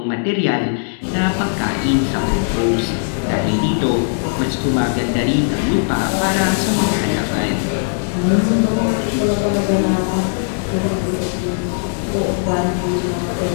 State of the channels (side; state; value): right; silent; digital silence